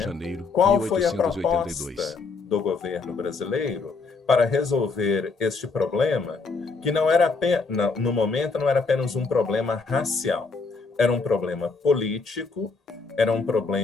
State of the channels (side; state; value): right; quieter; 4.3 dB